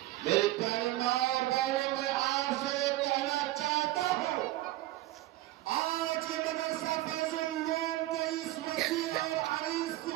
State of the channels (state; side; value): quieter; left; 16.6 dB